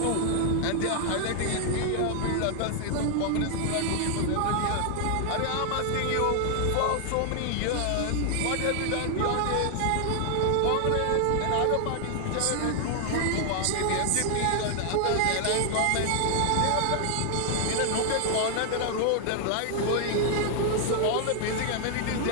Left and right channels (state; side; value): different; both; correlation 0.00